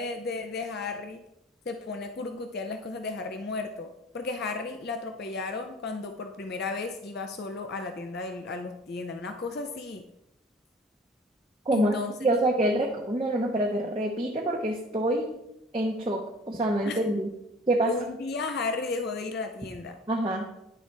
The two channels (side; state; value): both; normal; correlation 0.46